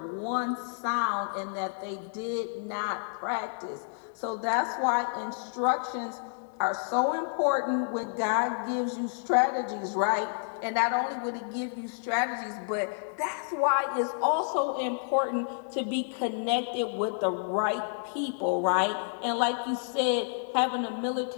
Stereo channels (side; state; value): right; silent; digital silence